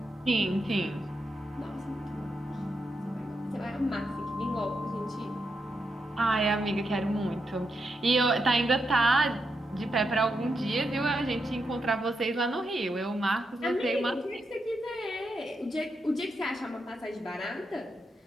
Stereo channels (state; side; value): normal; both; correlation 0.84